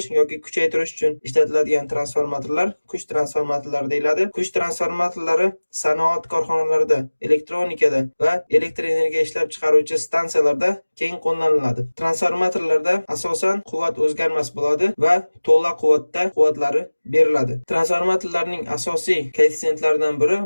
yoki kuchaytirish uchun ishlatiladigan transformatorlar kuch transformatorlari deyiladi. Kuch transformatorlari sanoat korxonalarida, elektronikada va elektr energiya ishlab chiqaruvchi stansiyalarda keng qo'llaniladi. Transformatorlarda asosan quvvat o'zgarmas bo'ladi va to'la quvvatda quvvatlari beriladi. Transformatorlarning asosiy koeffitsentlaridan biri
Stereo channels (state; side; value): inverted; both; correlation -1.00